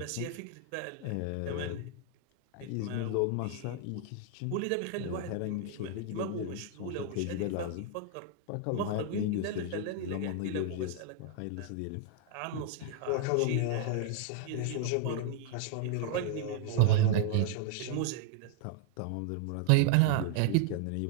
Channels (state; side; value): different; both; correlation 0.00